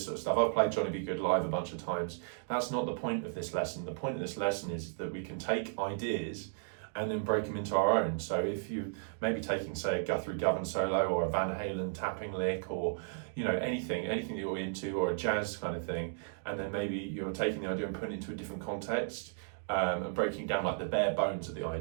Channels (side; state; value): left; silent; digital silence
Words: sort of stuff. I've played Johnny Be Good live a bunch of times. That's not the point of this lesson. The point of this lesson is that we can take ideas and then break them into our own. So if you maybe taking, say, a Guthrie Govan solo or a Van Halen tapping lick, or you know, anything that you're into, or a jazz kind of thing, and then maybe you're taking the idea and putting it into a different context, and breaking down like the bare bones of the